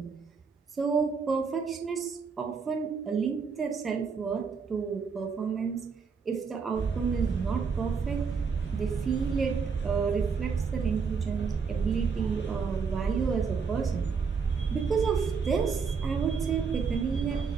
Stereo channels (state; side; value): quieter; left; 5.5 dB